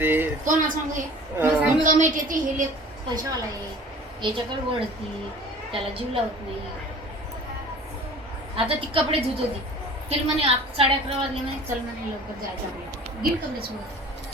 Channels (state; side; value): normal; both; correlation 0.45